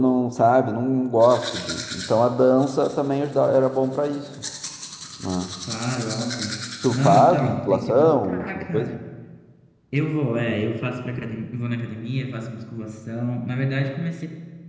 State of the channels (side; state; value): both; identical; correlation 1.00